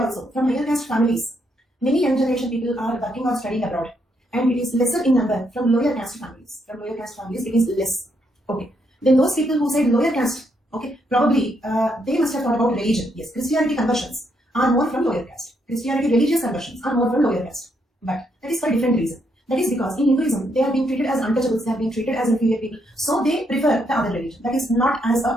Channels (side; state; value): both; normal; correlation 0.76